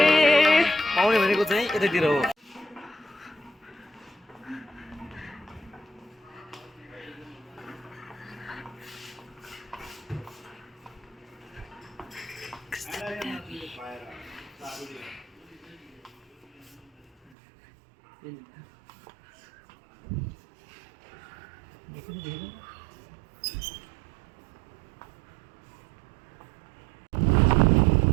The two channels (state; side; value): drops out; left; at 17.3 s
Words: पाउने भनेको चाहिँ यतातिर हो